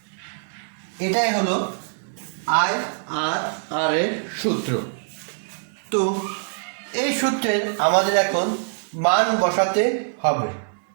এটাই হলো IRR এর সূত্র। তো এই সূত্রের আমাদের এখন মান বসাতে হবে।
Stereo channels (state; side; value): silent; left; digital silence